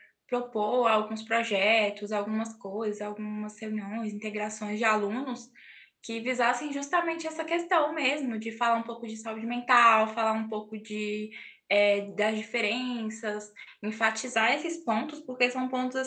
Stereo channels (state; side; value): identical; both; correlation 1.00